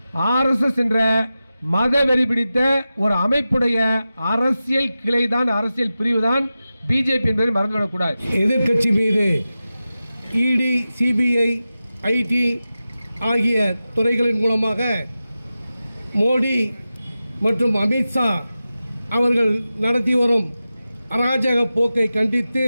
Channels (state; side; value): inverted; both; correlation -0.94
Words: ஆர்எஸ்எஸ் என்ற மதவெறி பிடித்த ஒரு அமைப்புடைய அரசியல் கிளைதான், அரசியல் பிரிவு தான் பிஜேபி என்பதை மறந்துவிடக்கூடாது. எதிர்கட்சி மீது இடி, சிபிஐ, ஐடி ஆகிய துறைகளின் மூலமாக மோடி மற்றும் அமித்ஷா அவர்கள் நடத்தி வரும் அராஜக போக்கை கண்டித்து